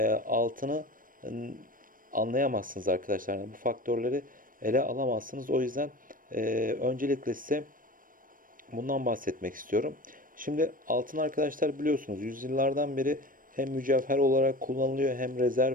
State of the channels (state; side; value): late; left; 0.40 ms